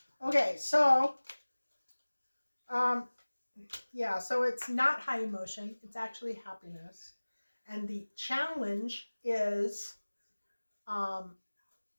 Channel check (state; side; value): inverted; both; correlation -1.00